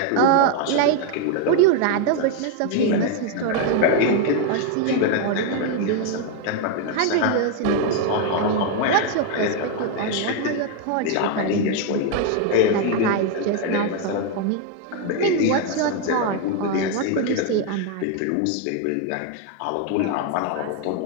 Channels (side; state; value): both; different; correlation 0.01